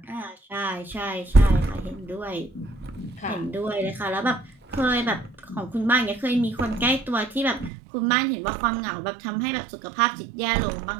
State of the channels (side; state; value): left; drops out; at 7.7 s